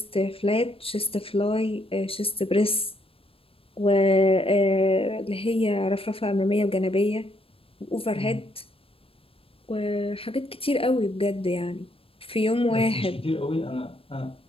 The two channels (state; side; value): late; right; 0.27 ms